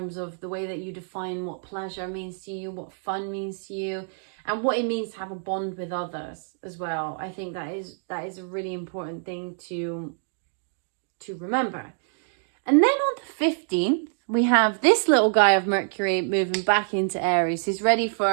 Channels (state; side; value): silent; left; digital silence